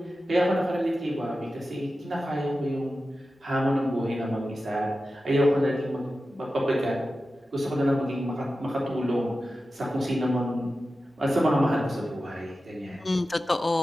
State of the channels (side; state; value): both; normal; correlation 0.93